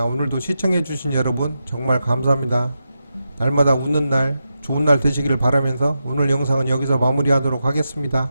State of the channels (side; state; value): both; inverted; correlation -0.88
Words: 오늘도 시청해주신 여러분 정말 감사합니다. 날마다 웃는 날 좋은 날 되시기를 바라면서 오늘 영상은 여기서 마무리하도록 하겠습니다.